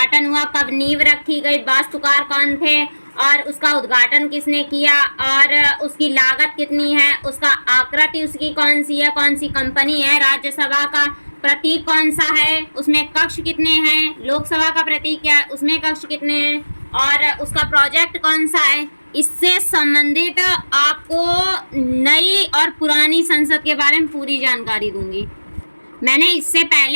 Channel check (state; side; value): inverted; both; correlation -1.00